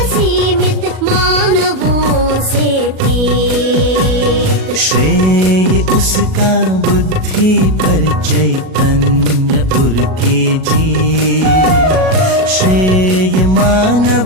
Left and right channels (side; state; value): left; late; 37 ms